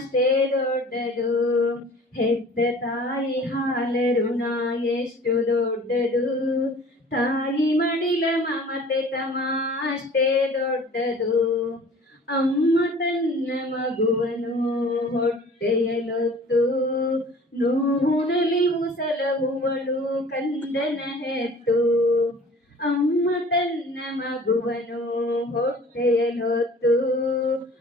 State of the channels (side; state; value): both; normal; correlation 0.47